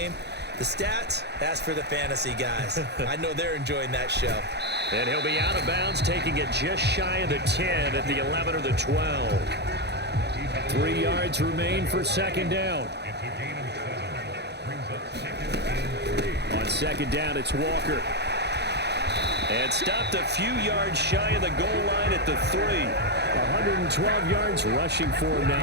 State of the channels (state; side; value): late; left; 0.49 ms